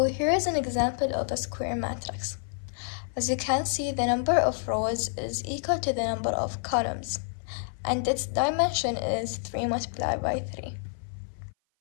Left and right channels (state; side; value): silent; right; 56 dB below the other